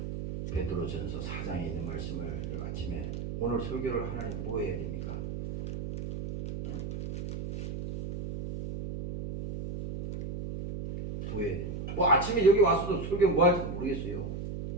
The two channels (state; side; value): noise; right; hum, 6 dB below the sound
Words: 베드로전서 4장에 있는 말씀을 아침에 오늘 설교를 하나님 뭐 해야 됩니까? 뭐 해야 됩니까? 뭐 아침에 여기 와서도 설교 뭐 할지도 모르겠어요.